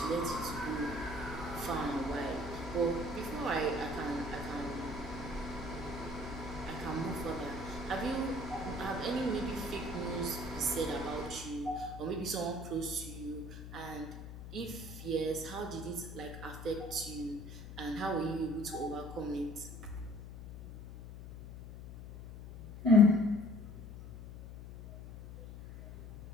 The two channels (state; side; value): noise; left; hum, 12 dB below the sound